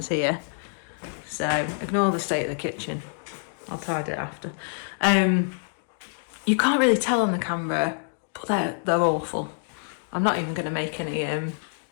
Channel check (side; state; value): right; silent; digital silence